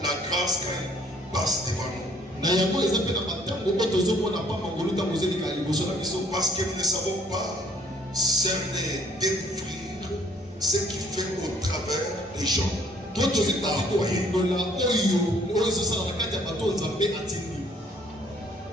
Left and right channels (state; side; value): normal; both; correlation 0.60